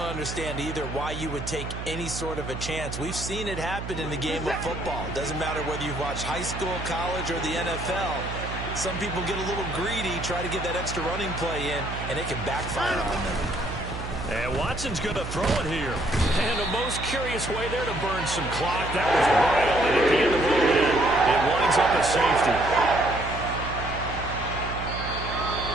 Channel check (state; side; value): noise; right; hum, 7 dB below the sound